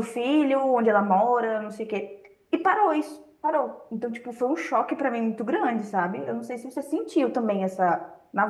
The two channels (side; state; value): both; identical; correlation 1.00